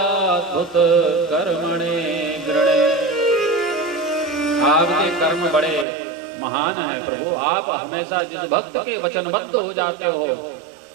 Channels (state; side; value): drops out; left; at 5.9 s